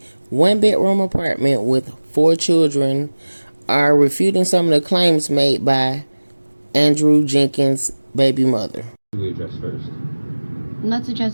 one-bedroom apartment with 4 children are refuting some of the claims made by Andrew Jenkins' baby mother. What do we address first? Let's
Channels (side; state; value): both; inverted; correlation -1.00